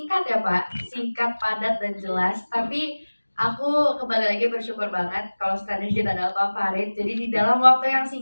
ya Pak, singkat, padat dan jelas. Tapi aku kembali lagi bersyukur banget kalau standar kita adalah Pak Farid. Jadi di dalam waktu yang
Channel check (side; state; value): both; inverted; correlation -1.00